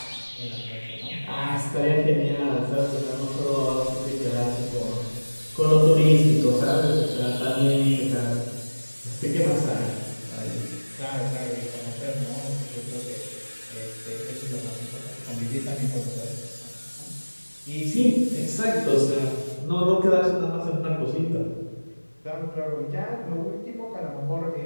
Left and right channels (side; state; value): both; inverted; correlation -1.00